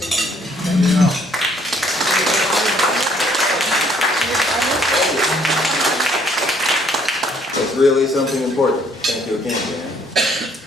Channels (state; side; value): normal; both; correlation 0.64